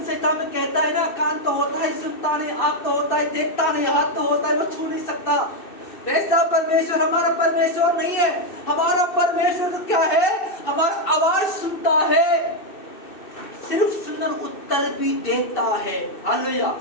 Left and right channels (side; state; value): right; late; 2.6 ms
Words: संहिता में कहता है ना, कान तो होता है सुनता नहीं, आंख तो होता है देखता नहीं, हाथ तो होता है वो छू नहीं सकता। वैसा परमेश्वर हमारा परमेश्वर नहीं है। हमारा परमेश्वर तो क्या है, हमारा आवाज सुनता है, सिर्फ सुनकर उत्तर भी देता है। हालेलुया।